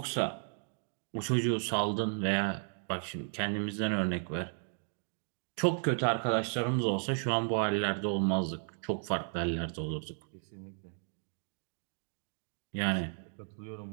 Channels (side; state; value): left; silent; 55 dB below the other